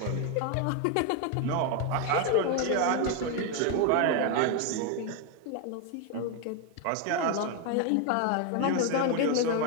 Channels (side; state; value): both; different; correlation 0.01